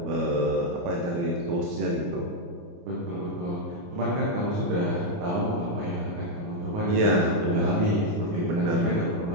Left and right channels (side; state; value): left; late; 29 ms